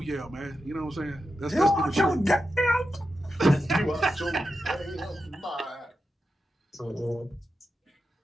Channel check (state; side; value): normal; both; correlation 0.89